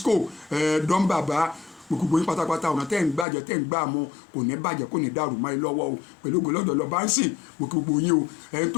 Dán bàbá, gbogbo yín pátápátá ọ̀nà tẹ́ ń gbàjẹ́ tẹ́ ń gbà mọ́ kò ní bàjẹ́ kò ní dàrú mọ́ ẹ lọ́wọ́ o. Pẹ̀lú ògo lọ́dọ̀ lọ bá ń sìn, mo kí gbogbo yín o. Ẹni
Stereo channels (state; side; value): drops out; right; at 3.2 s